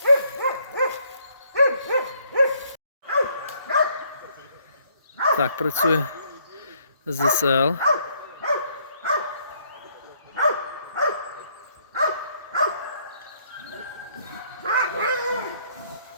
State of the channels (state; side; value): inverted; both; correlation -0.67